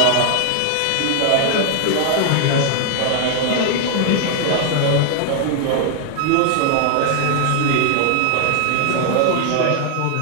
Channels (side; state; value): both; different; correlation 0.00